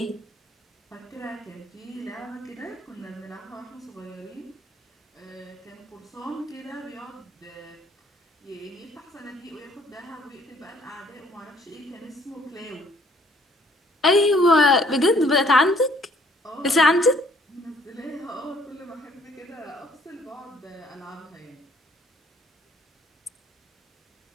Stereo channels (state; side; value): normal; both; correlation 0.61